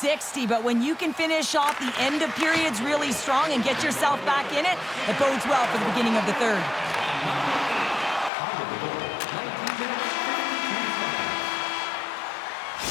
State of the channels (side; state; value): right; drops out; at 8.3 s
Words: but when you can finish off the end of periods really strong and get yourself back in it, it bodes well for the beginning of the third.